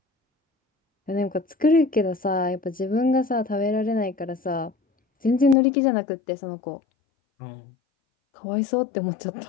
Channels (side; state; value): right; drops out; at 5.6 s